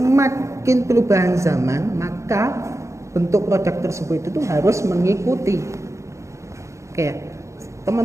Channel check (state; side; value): late; left; 0.14 ms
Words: perubahan zaman, maka bentuk produk tersebut itu harus mengikuti. Oke,